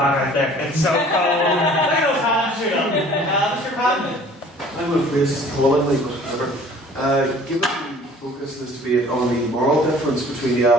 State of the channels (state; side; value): normal; both; correlation 0.50